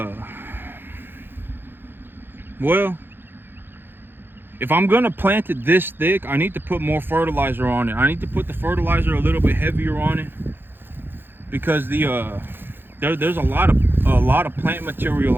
well, if I'm gonna plant it this thick, I need to put more fertilizer on it. I need to put the fertilizer a little bit heavier on it, because there's a lot of plant material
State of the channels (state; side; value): late; left; 0.10 ms